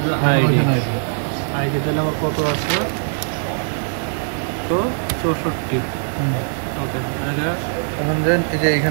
আইডি আইডি দিলে আমার কত আছে 264 ওকে এখন দেন এই যে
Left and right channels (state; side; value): silent; left; digital silence